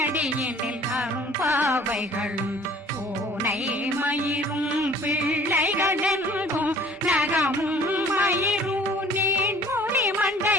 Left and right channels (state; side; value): normal; both; correlation 0.52